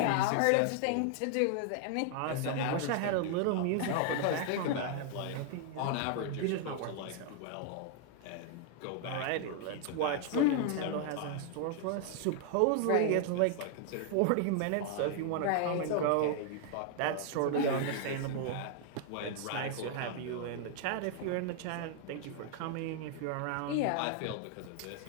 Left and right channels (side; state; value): both; different; correlation 0.00